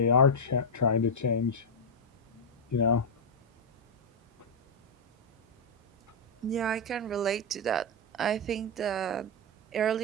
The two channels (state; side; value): normal; both; correlation -0.01